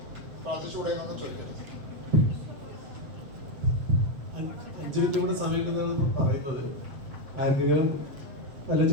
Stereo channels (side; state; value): left; late; 7.3 ms